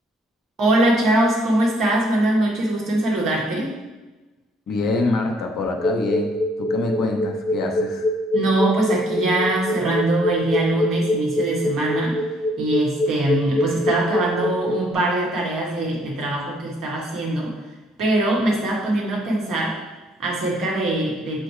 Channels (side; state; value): both; normal; correlation 0.65